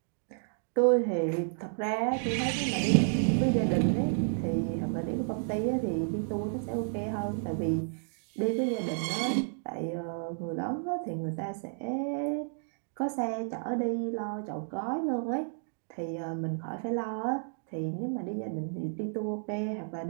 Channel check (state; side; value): silent; left; digital silence